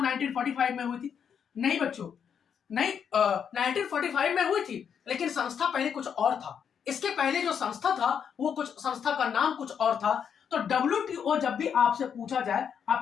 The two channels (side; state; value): right; quieter; 7.6 dB